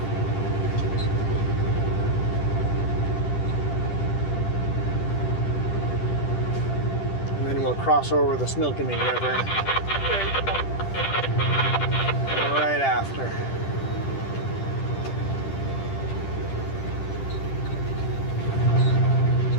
And then we'll cross over the Similkameen River right after.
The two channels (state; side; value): late; right; 10 ms